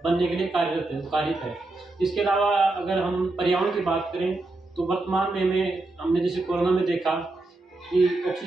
बनने के लिए कार्यरत है। इसके अलावा अगर हम पर्यावरण की बात करें तो वर्तमान में हमने जैसे कोरोना में देखा कि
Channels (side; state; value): left; quieter; 3.0 dB